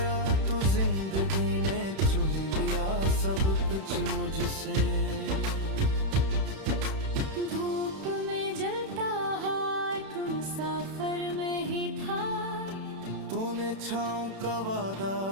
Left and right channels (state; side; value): late; left; 31 ms